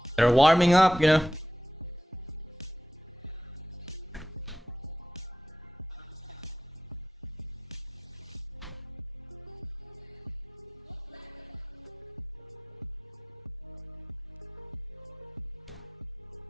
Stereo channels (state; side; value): normal; both; correlation 0.87